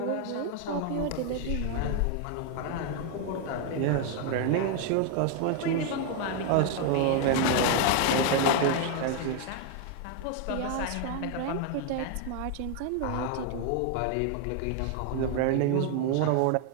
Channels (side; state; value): both; different; correlation 0.00